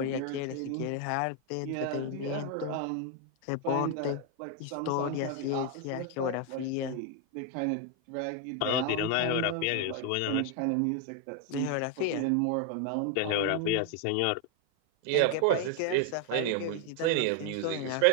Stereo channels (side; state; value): both; different; correlation 0.01